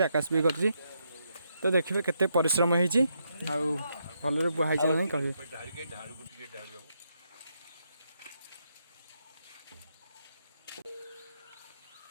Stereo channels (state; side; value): inverted; both; correlation -0.79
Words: आकाश भी कर तो देखिए केते परिश्रम होती भल बुहाई नहीं कहे